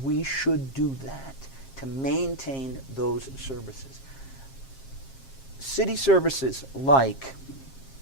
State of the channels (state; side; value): late; right; 7.5 ms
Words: we should do that to maintain those services. city services like